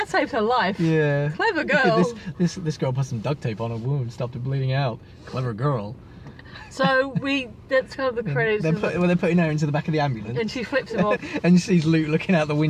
saved her life. Yeah. Clever girl. This girl put some duct tape on her wound, stopped it bleeding out. Clever girl. So that's kind of the credits. They're putting her into the back of the ambulance. And she flips him off. And she sees Luke looking out the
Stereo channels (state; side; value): identical; both; correlation 1.00